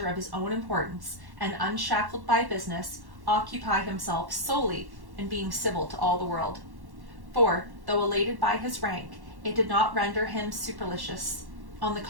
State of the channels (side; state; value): left; late; 1.1 ms